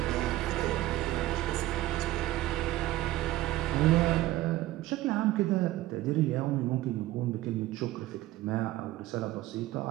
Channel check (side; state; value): left; quieter; 16.1 dB